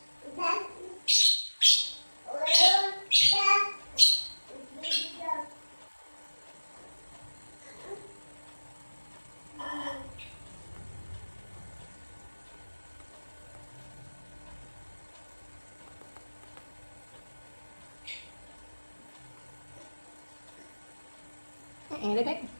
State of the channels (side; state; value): both; inverted; correlation -1.00